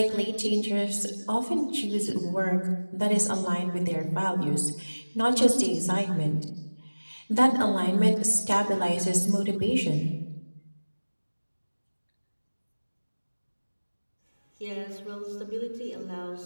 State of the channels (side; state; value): both; inverted; correlation -1.00